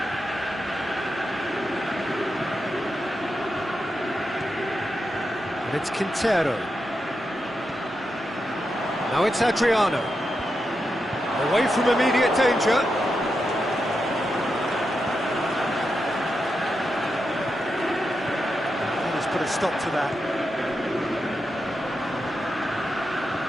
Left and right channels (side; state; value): both; normal; correlation 0.87